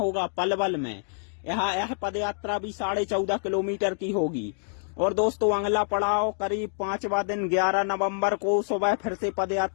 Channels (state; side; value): silent; right; digital silence